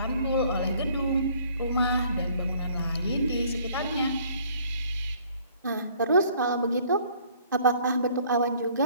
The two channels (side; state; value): both; inverted; correlation -0.58